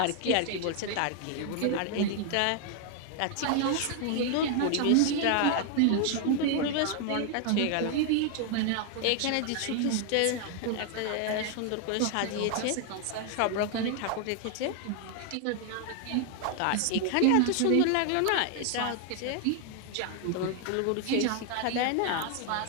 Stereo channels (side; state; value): both; different; correlation 0.00